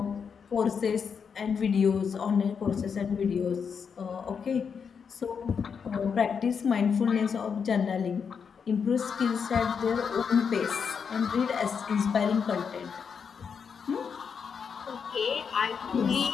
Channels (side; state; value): right; quieter; 6.4 dB